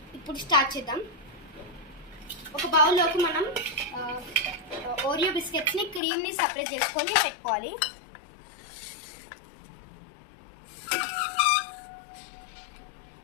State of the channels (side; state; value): right; drops out; at 6.0 s